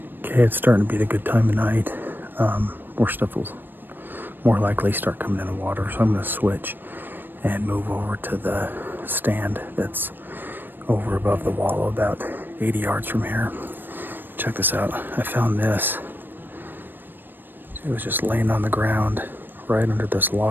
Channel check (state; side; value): late; left; 0.094 ms